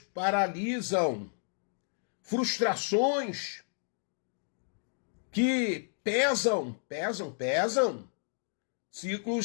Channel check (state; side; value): silent; right; digital silence